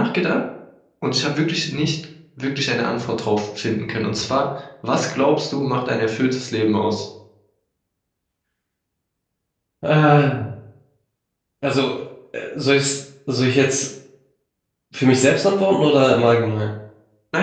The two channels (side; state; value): both; identical; correlation 1.00